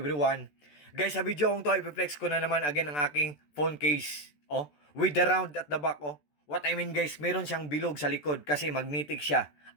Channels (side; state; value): right; late; 14 ms